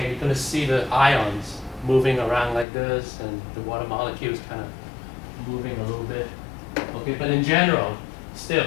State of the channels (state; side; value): drops out; right; at 2.7 s